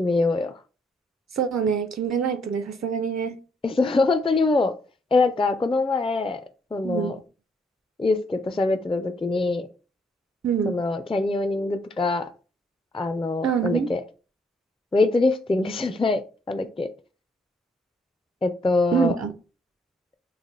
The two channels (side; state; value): both; normal; correlation 0.71